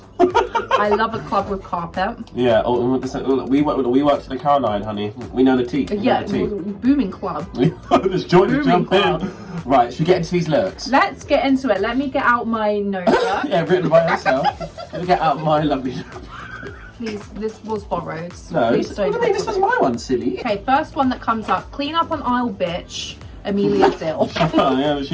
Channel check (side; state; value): both; identical; correlation 1.00